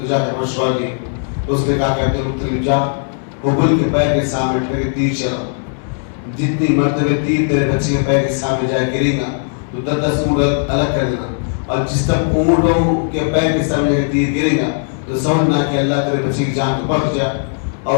جا کے مشورہ لی. اس نے کہا کہ عبد المطلب جا ببل کے پیر کے سامنے ٹھہر کے تیر چلا. جتنی مرتبہ تیر تیرے بچے کے پیر کے سامنے جائے گرے گا تو 10 اونٹ الگ کر دینا, اور جس تک اونٹوں کے پیر کے سامنے تیر گرے گا تو سمجھنا کہ اللہ تیرے بچے کی جان کو بخش جائے اور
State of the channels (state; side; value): silent; right; digital silence